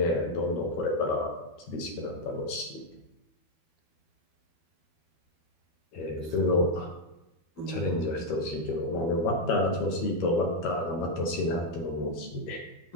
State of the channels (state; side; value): late; right; 12 ms